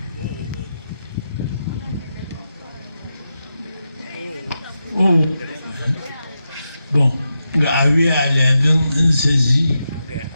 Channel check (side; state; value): both; inverted; correlation -0.88